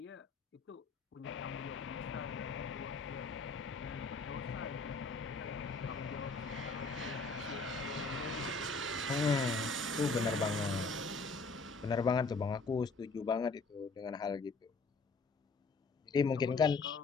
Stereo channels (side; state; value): right; quieter; 4.0 dB